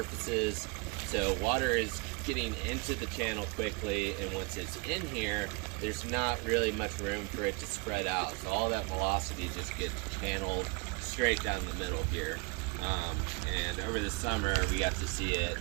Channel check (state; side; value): quieter; left; 29.2 dB